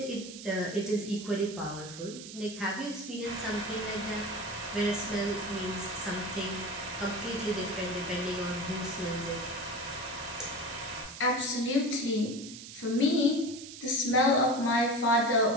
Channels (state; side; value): noise; right; hiss, 13 dB below the sound